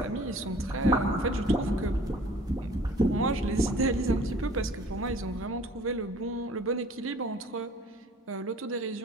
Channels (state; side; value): normal; both; correlation 0.51